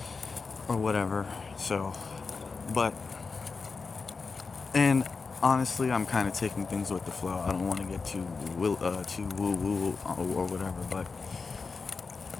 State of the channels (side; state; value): right; quieter; 4.6 dB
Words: or whatever. So, and honestly, I'm kind of taking things with the flow. I don't want to get too woo woo or whatever. But